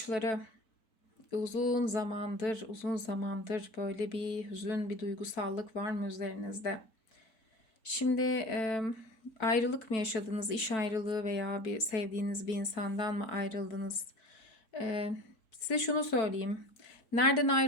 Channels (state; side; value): late; right; 4.5 ms